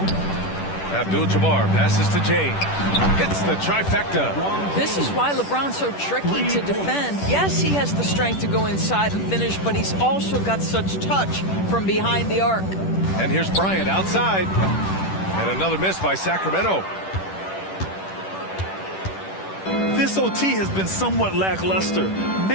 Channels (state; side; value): late; right; 10 ms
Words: Abdul-Jabbar passes to James. Hits the trifecta. This is why LeBron's so tricky to defend. Yes, he has the strength to go inside and finish, but he's also got such touch from behind the arc. And here's Bryant outside. And another miss by Sacramento. This OT has been somewhat lackluster,